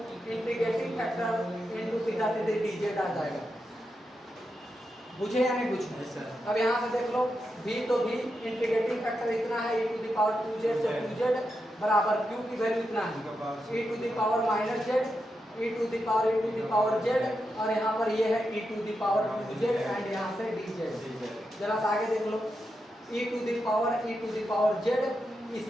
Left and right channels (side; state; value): both; normal; correlation 0.86